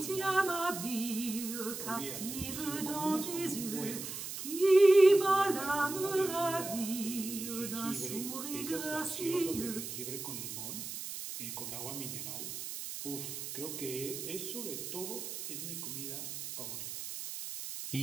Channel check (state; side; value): noise; right; hiss, 7 dB below the sound